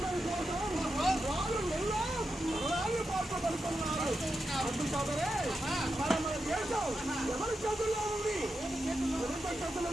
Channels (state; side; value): normal; both; correlation 0.88